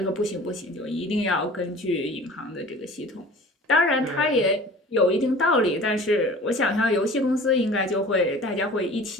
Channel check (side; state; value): both; normal; correlation 0.43